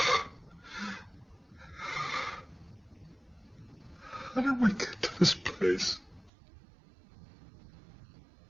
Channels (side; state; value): left; drops out; at 6.3 s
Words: How did we get to this place?